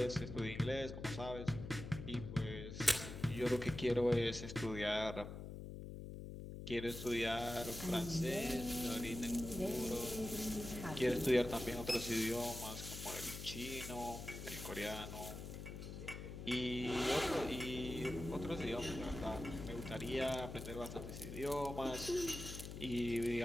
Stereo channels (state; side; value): noise; left; hum, 8 dB below the sound